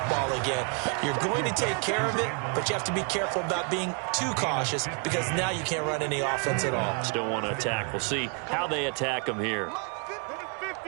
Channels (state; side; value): quieter; left; 37.1 dB